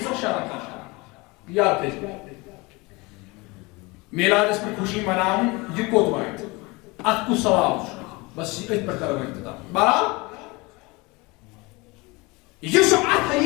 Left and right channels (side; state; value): right; quieter; 25.0 dB